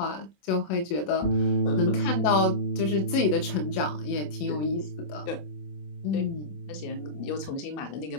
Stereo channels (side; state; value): right; late; 27 ms